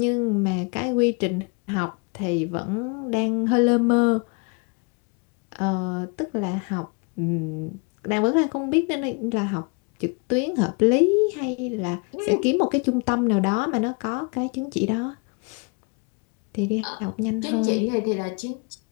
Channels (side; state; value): right; quieter; 32.3 dB